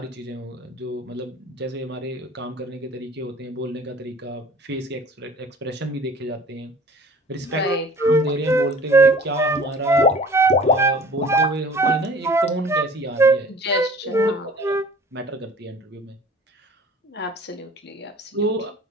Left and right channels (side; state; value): both; normal; correlation 0.47